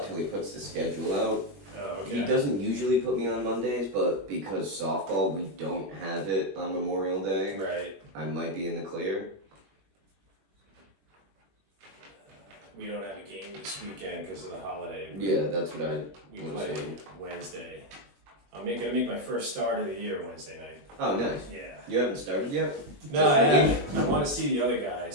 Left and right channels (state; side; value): late; left; 21 ms